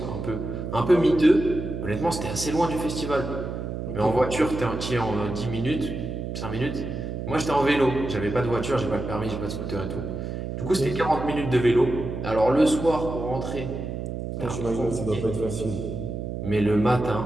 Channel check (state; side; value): noise; right; hum, 5 dB below the sound